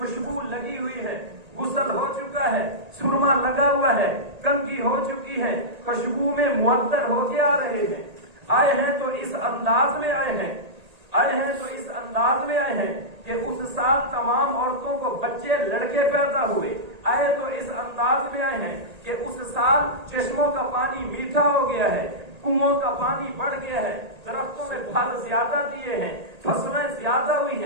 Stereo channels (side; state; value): left; late; 1.8 ms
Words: لگی ہوئی ہے، غسل ہو چکا ہے، سرما لگا ہوا ہے، کنگھی ہو چکی ہے، خوشبو میں معطر ہو کے آ رہے ہیں. آئے ہیں تو اس انداز میں آئے ہیں، آئے ہیں تو اس انداز میں آئے ہیں کہ اس سال تمام عورتوں کو بچے لڑکے پیدا ہوئے. آئے تو اس انداز میں آئے ہیں کہ اس سال چشموں کا پانی میٹھا ہو گیا ہے، کنووں کا پانی بڑھ گیا ہے، درختوں میں پھل زیادہ دیے ہیں، فصلیں زیادہ ہوئی